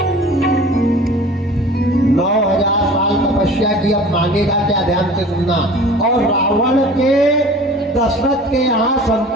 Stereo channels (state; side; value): normal; both; correlation 0.43